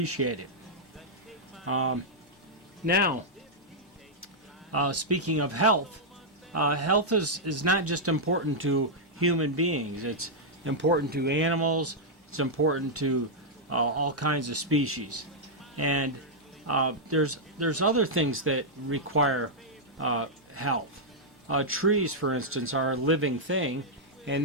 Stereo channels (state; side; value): normal; both; correlation -0.06